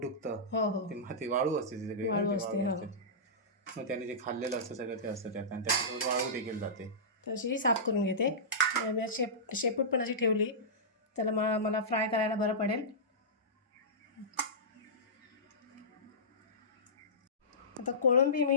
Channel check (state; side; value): normal; both; correlation -0.18